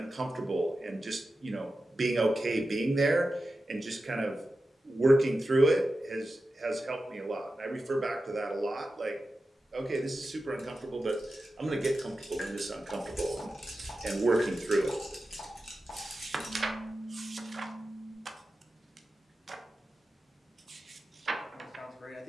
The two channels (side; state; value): both; normal; correlation 0.92